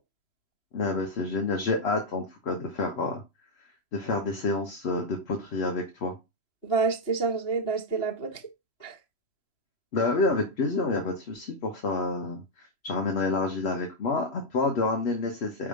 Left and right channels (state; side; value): late; right; 3.1 ms